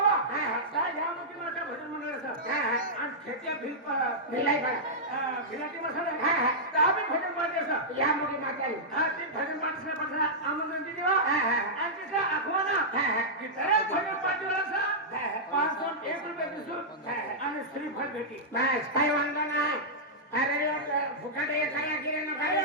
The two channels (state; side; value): normal; both; correlation -0.11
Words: काय घ्या मग माझ्या भजन मंडळ असं आणि खेत्या भिलाई बडा भिलाटी मसाला हा तर आम्ही भजन पार्टी असं या मुली मातानी हा ते भजन पार्टीला पडला आमंत्रण दिली वा हा आणि तिचा आखवाना की दरेक भजन पार्टीला असं 501 रुपये दिसून आणि श्रीफळ भेटी बस काय वांधा नाही. अरे फुकट ये खाया गिरे न खाया